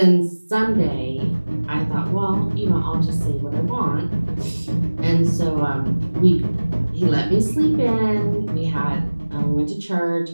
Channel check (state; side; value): inverted; both; correlation -1.00